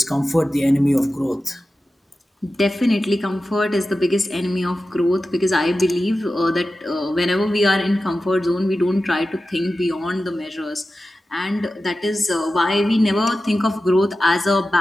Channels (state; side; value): normal; both; correlation 0.94